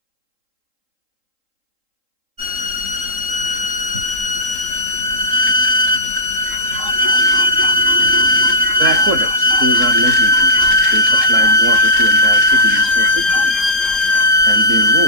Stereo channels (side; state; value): left; late; 3.8 ms